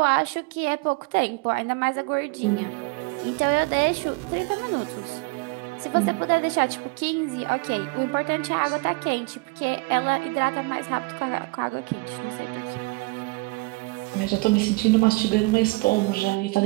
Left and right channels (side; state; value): left; quieter; 26.3 dB